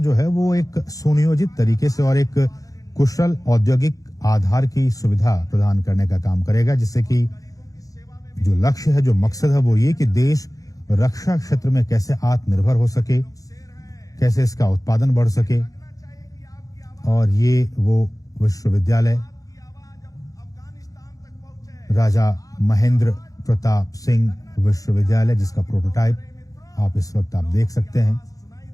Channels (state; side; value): late; right; 0.17 ms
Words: है वो एक सुनियोजित तरीके से और एक कुशल औद्योगिक आधार की सुविधा प्रदान करने का काम करेगा, जिससे कि जो लक्ष्य है, जो मकसद है वो ये कि देश रक्षा क्षेत्र में कैसे आत्मनिर्भर हो सके, कैसे इसका उत्पादन बढ़ सके। और ये वो विश्वविद्यालय राजा महेंद्र प्रताप सिंह विश्वविद्यालय, जिसका प्रोटोटाइप आप इस वक्त आप देख सकते हैं।